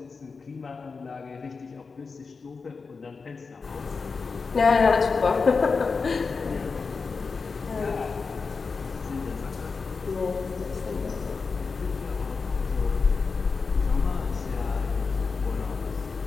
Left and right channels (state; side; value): quieter; right; 4.7 dB